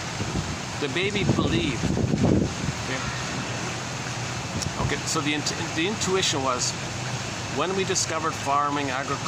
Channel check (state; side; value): identical; both; correlation 1.00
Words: the baby believed. Okay. So the intuition was when we discovered farming,